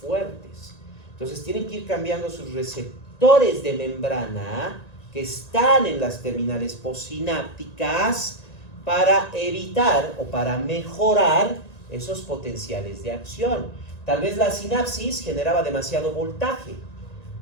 Entonces tienen que ir cambiando sus receptores de membrana que están en las terminales postsinápticas para evitar o para mejorar esos potenciales de acción. Tal vez la sinapsis generaba demasiado voltaje,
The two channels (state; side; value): late; right; 1.9 ms